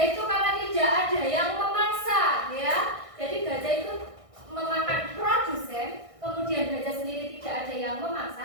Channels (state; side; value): late; left; 1.6 ms